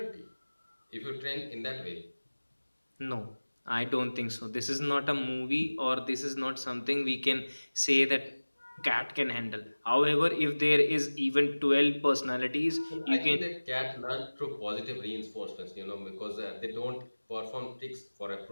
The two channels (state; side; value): inverted; both; correlation -1.00